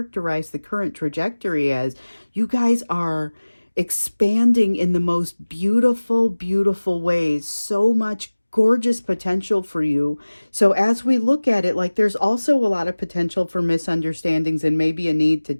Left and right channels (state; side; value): inverted; both; correlation -1.00